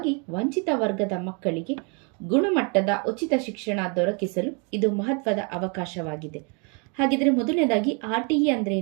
ವಂಚಿತ ವರ್ಗದ ಮಕ್ಕಳಿಗೆ ಗುಣಮಟ್ಟದ ಉಚಿತ ಶಿಕ್ಷಣ ದೊರಕಿಸಲು ಇದು ಮಹತ್ವದ ಅವಕಾಶವಾಗಿದೆ. ಹಾಗಿದ್ರೆ ಮೊದಲನೇದಾಗಿ RTE ಅಂದ್ರೆ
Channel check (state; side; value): quieter; left; 34.9 dB